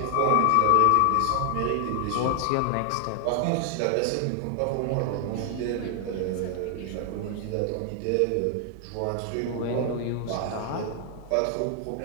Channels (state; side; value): different; both; correlation 0.00